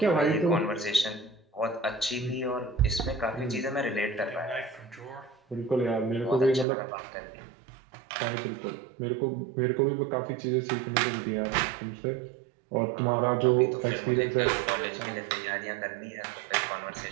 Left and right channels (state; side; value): drops out; left; at 6.7 s